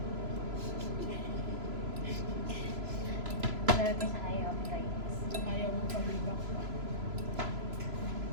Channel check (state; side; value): late; left; 3.0 ms